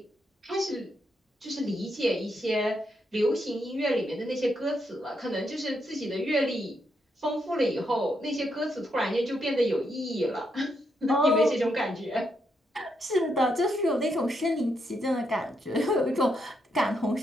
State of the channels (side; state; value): both; normal; correlation 0.80